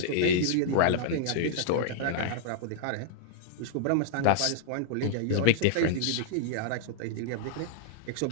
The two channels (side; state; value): both; different; correlation -0.01